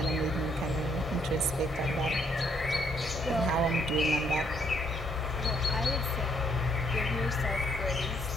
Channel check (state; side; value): normal; both; correlation 0.70